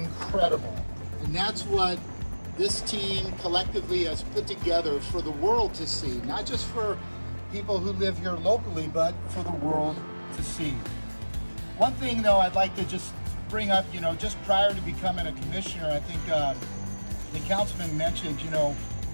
And that's what this team collectively has put together for the world to see, not just for people who live here locally, but for the world to see. One thing though I'd like to just bring up, you know, just prior to becoming a commissioner, I think the councilman mentioned, you know,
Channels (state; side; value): inverted; both; correlation -1.00